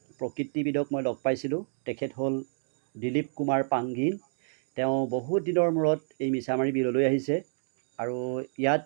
প্ৰকৃতিবিদক মই লগ পাইছিলোঁ। তেখেত হ'ল দিলীপ কুমাৰ পাংগিন। তেওঁ বহুত দিনৰ মূৰত এই মিছামাৰী বিললৈ আহিছে আৰু ইয়াত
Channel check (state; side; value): silent; left; digital silence